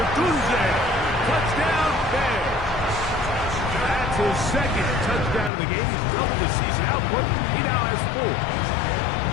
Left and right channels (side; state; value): right; drops out; at 5.5 s